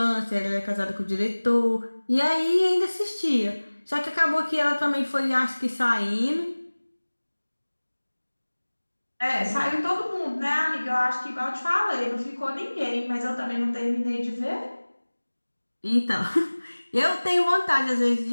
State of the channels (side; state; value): both; inverted; correlation -1.00